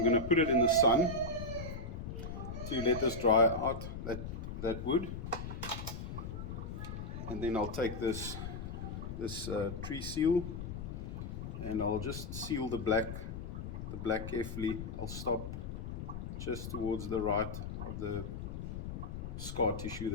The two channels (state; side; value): noise; left; rumble, 6 dB below the sound